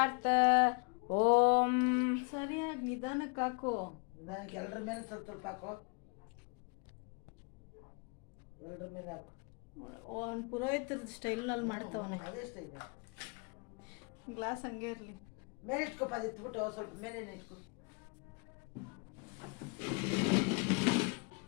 ॐ ಸರಿಯಾಗಿ ನಿಧಾನಕ್ಕೆ ಹಾಕು. ನಿಧಾನಕ್ಕೆ ಎಲ್ಲರ ಮೇಲೆ ಸ್ವಲ್ಪ ಸ್ವಲ್ಪ ಹಾಕೋ. ಎಲ್ಲರ ಮೇಲೆ ಹಾಕು. ಒಂದು ಪುರೋಹಿತರ ಸ್ಟೈಲ್ನಲ್ಲಿ ಮಾಡ್ತಾವನೆ. ಅದೇ ಸ್ಟೈಲ್. ಗ್ಲಾಸ್ ಹಂಗೆ ಇರಲಿ. ಮೇಲೆ ಇಟ್ಕೊಪ್ಪ, ಅದು ಇಟ್ಬಿಟ್ಟು ಸ್ವಲ್ಪ ಮೇಲೆ ಇಟ್ಕೊ.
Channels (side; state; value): right; quieter; 32.8 dB